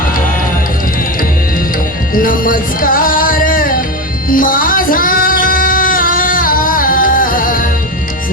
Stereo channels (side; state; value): both; normal; correlation 0.17